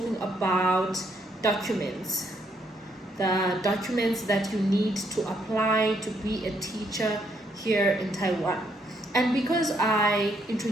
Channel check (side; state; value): both; normal; correlation 0.73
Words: about documents, the documents that you need to apply to be a teacher here in Taiwan. And because I